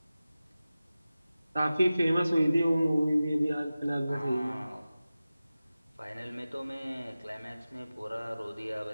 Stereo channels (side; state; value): both; inverted; correlation -0.96